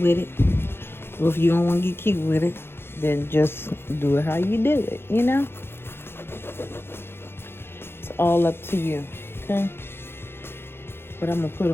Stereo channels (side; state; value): right; late; 0.11 ms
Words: it. Well, if you don't want to get cute with it, then just do it how you do it, you know? It's all up to you, okay? But I'm going to put